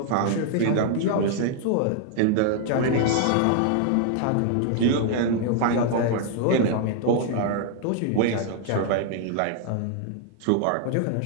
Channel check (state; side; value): different; both; correlation 0.00